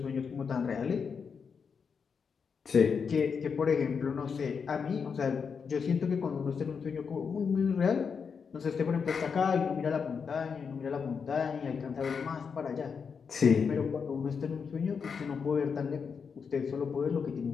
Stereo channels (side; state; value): right; quieter; 6.0 dB